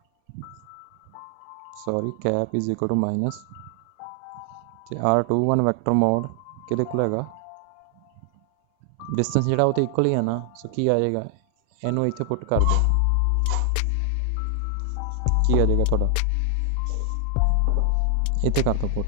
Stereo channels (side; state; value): both; different; correlation 0.00